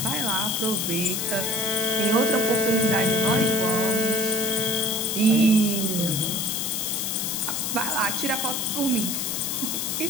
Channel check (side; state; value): left; noise; hiss, 1 dB below the sound